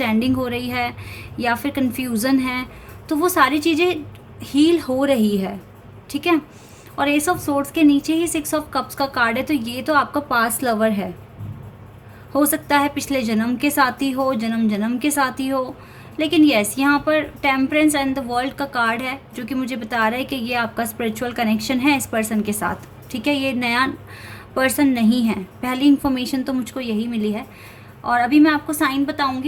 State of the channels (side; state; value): both; identical; correlation 1.00